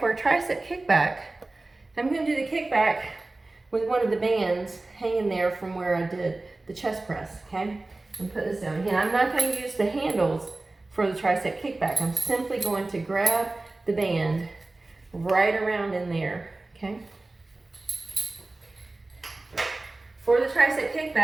a tricep kickback, I'm going to do the kickback with one of the bands hanging there from where I did the chest press, okay? And put this down. Again, I'm not going to use the handles for the tricep kickback. I'm simply going to grab the band right around in there, okay? For the tricep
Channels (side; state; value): left; quieter; 3.1 dB